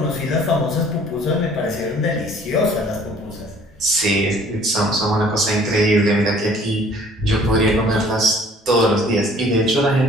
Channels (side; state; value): both; normal; correlation 0.54